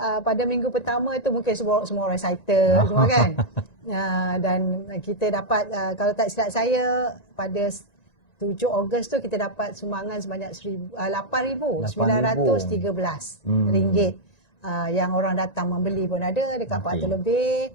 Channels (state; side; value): late; right; 1.9 ms